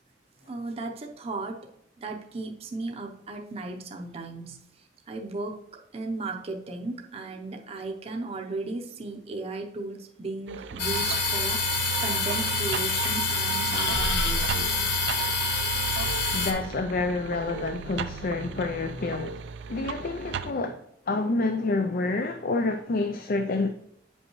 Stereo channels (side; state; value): both; normal; correlation 0.24